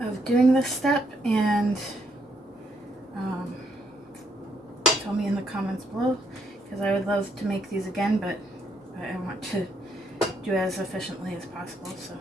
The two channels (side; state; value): both; normal; correlation 0.74